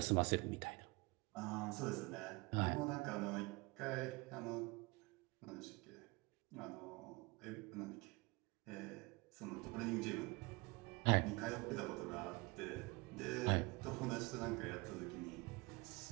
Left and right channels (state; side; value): quieter; left; 25.0 dB